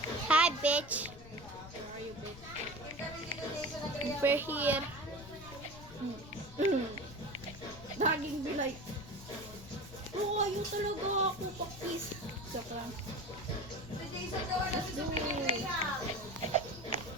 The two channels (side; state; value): left; noise; rumble, 16 dB below the sound